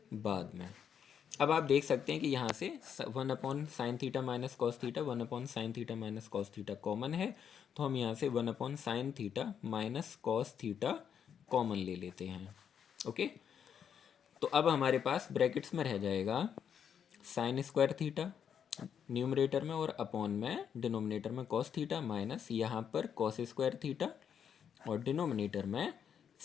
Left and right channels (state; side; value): quieter; right; 8.1 dB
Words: बाद में। अब आप देख सकते हैं कि यहाँ से one upon sine theta minus cos theta, one upon sine theta minus cos theta common है, तो हम यहाँ से one upon sine theta minus cos theta common ले लेते हैं। ओके, तो अब हमारे पास ब्रैकेट्स में रह जाएगा साइन स्क्वायर थीटा न्यूमरेटर में और अपॉन में डिनोमिनेटर में कॉस थीटा माइनस यहाँ पर कॉस स्क्वायर थीटा और डिनोमिनेटर में